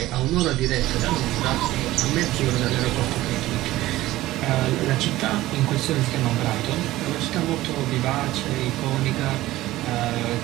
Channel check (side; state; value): left; quieter; 16.5 dB